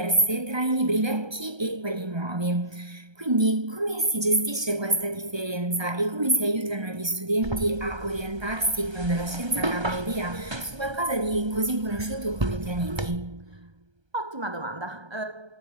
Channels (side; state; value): left; late; 1.3 ms